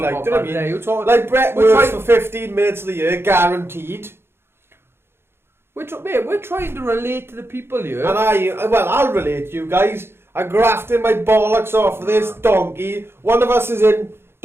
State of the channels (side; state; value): left; late; 0.11 ms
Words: do you know what I yeah, mean? you're talking- Like, Brett we're works trying- for 15 minutes of the year, guaranteed. We're trying to relate to the people here. And I'll relate to you guys. I'm grafting my bollocks off of this donkey. One of us is in